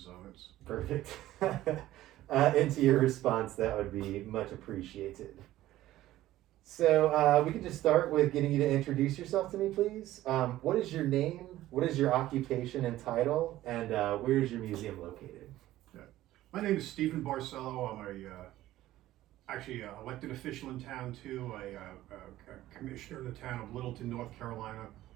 so it's. Perfect. Into your response, that would be much appreciated. So we could just start with getting you to introduce yourself to me, please. What is your name? What is your occupation and title? And where is your museum located? My name is Stephen Barcelo. I'm actually an elected official in town too. A commissioner in the town of Littleton, North Carolina.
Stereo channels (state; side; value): quieter; left; 14.9 dB